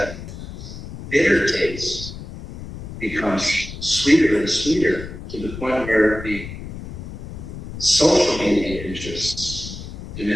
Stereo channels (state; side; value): noise; left; rumble, 11 dB below the sound